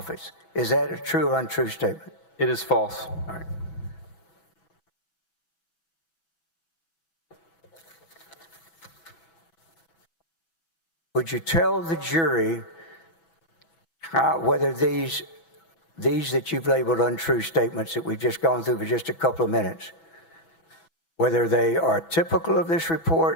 Is that a true or untrue statement? It is false. All right. Would you tell the jury whether these that you've labeled untrue statements that we've just gone through for just a couple of minutes, whether they are typical of this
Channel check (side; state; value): right; late; 6.1 ms